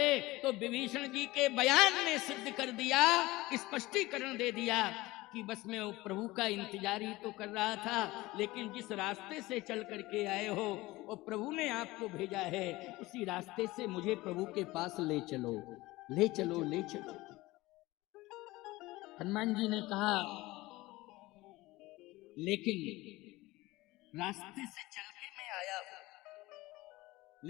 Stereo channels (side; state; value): right; quieter; 19.6 dB